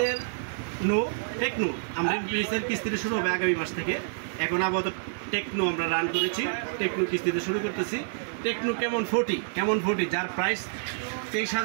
টেকনো। আমরা ইনফিনিক্সের কিস্তিটা শুরু হবে আগামী মাস থেকে। এখন আপাতত টেকনো আমরা রান করেছি, টেকনো কিস্তিতে শুরু করতেছি। টেকনো কেমন 40 যার প্রাইস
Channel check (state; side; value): silent; left; 57 dB below the other